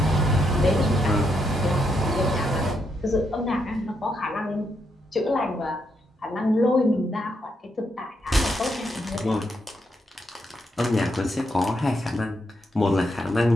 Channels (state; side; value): normal; both; correlation 0.79